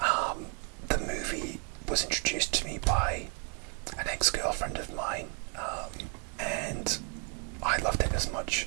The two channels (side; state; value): left; quieter; 35.9 dB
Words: movie was introduced to me by an ex-girlfriend of mine, and I loved it as much